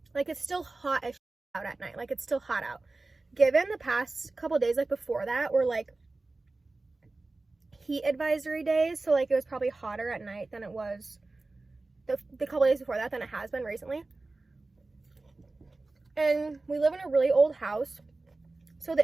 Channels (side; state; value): left; quieter; 3.3 dB